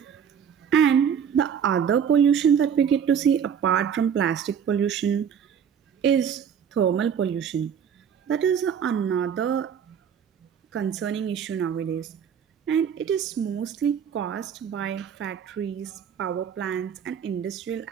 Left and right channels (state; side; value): quieter; left; 7.8 dB